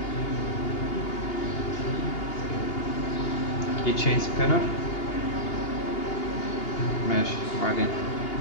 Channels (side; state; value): right; late; 2.8 ms